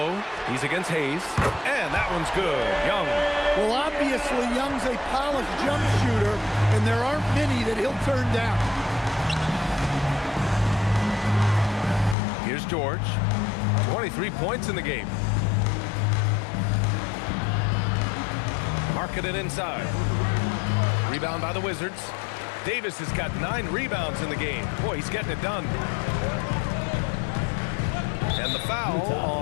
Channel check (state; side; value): drops out; right; at 12.2 s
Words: He's against Hayes. And that one's good. Young. Well, obviously, Young's a polished jump shooter, and there aren't many that he'll turn down. Here's George. 23 points in the game. Markkanen inside. Rebound by the Wizards. Davis has got 9 rebounds in the game. Boy, he's getting it done. And the foul